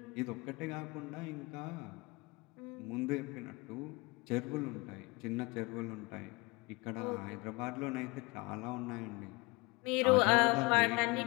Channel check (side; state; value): right; quieter; 25.4 dB